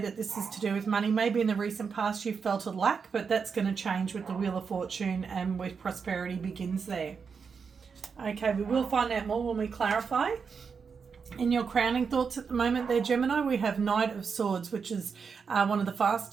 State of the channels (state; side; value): quieter; left; 5.8 dB